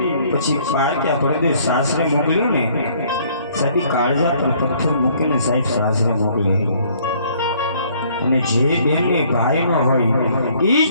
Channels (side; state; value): both; inverted; correlation -0.61